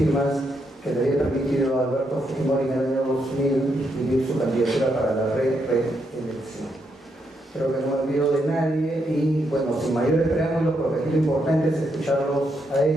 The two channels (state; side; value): normal; both; correlation 0.79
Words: que le había permitido a Alberto Fujimori en el año 2000 vivir su candidatura para la reelección. Creo que no me olvido de nadie y bueno, sin mayores preámbulos, porque aquí lo importante es escucharlos a